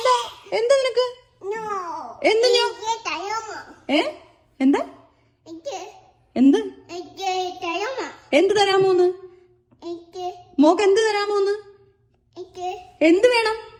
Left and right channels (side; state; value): both; identical; correlation 1.00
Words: എന്താ നിനക്ക്? എന്ത് എന്താ എന്ത് എന്ത് തരാമോന്ന്? മോക്ക് എന്ത് തരാമോന്ന്? എന്ത് വേണം?